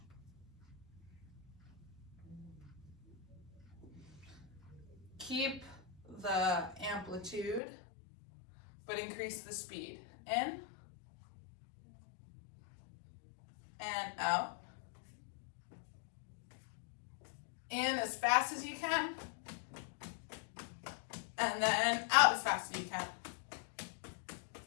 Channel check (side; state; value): right; drops out; at 7.6 s